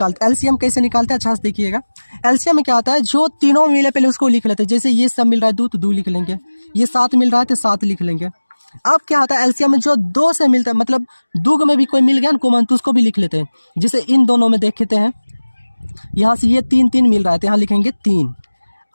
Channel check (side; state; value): both; inverted; correlation -1.00